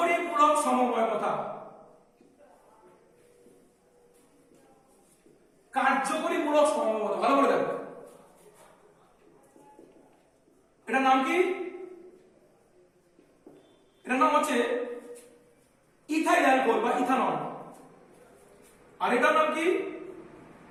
মূলক সমবায়বতা। কার্যকরী মূলক সমবায়বতা ভালো করে দেখো, এটার নাম কি? এটার নাম হচ্ছে ইথাইল অ্যালকোহল বা ইথানল। আর এটার নাম কি?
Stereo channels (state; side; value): identical; both; correlation 1.00